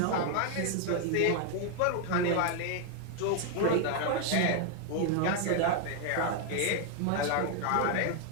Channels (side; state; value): both; different; correlation 0.00